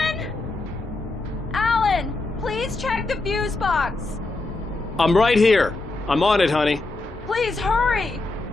Alan, please check the fuse box. I'm right here. I'm on it, honey. Please hurry.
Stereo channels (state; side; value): quieter; right; 3.1 dB